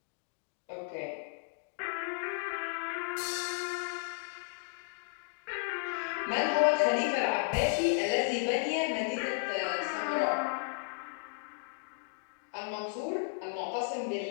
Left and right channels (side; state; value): right; silent; 55 dB below the other